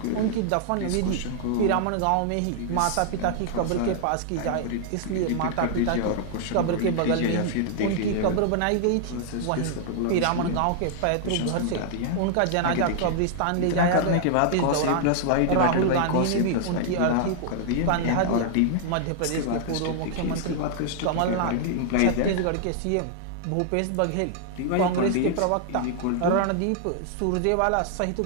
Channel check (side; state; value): both; different; correlation -0.01